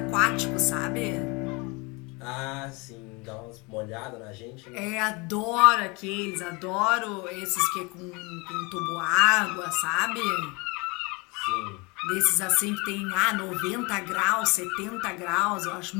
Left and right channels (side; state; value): right; quieter; 27.8 dB